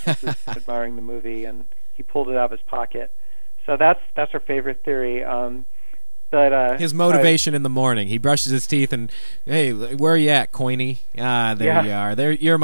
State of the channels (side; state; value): both; inverted; correlation -1.00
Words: was admiring the movie, and he pulled it out of his pocket. So that's our favorite theory. But his motivation in the morning, he brushes his teeth and, hey, where are you at, Coiny? There you are. You're